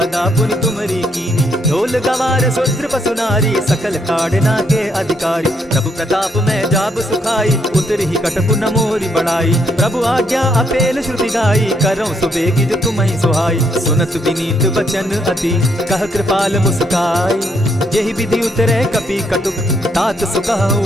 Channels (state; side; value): normal; both; correlation 0.73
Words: पुनि तुमरी कीनी। ढोल गवार शूद्र पशु नारी सकल ताड़ना के अधिकारी। प्रभु प्रताप में जाब सुखाई उतरि ही कटकु न मोरी बढ़ाई। प्रभु आज्ञा अपेल श्रुति गाई करऊं सुबेगी जो तुम्हि सुहाई। सुनत विनीत वचन अति कह कृपाल मुस्काई। यही विधि उतरे कपि कटुक तात